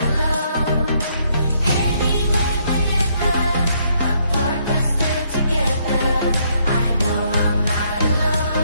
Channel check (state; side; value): inverted; both; correlation -0.70